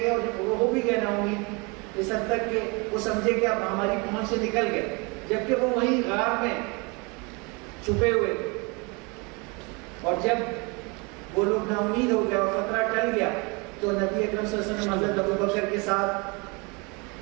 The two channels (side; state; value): left; quieter; 29.4 dB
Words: اور وہ ہو بھی گئے نا امید. اس حد تک کہ وہ سمجھے کہ اب ہماری پہنچ سے نکل گئے، جبکہ وہ وہیں غار میں چھپے ہوئے تھے۔ اور جب وہ لوگ نا امید ہو گئے اور خطرہ ٹل گیا تو نبی اکرم صلی اللہ علیہ وسلم حضرت ابو بکر کے ساتھ